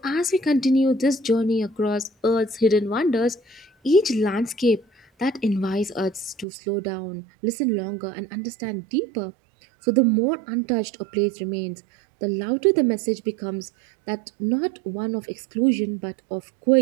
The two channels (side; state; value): left; drops out; at 6.5 s